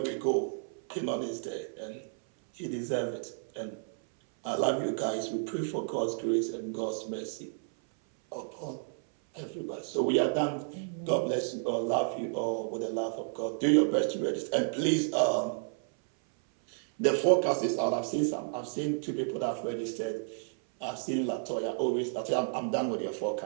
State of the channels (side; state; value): left; silent; 57 dB below the other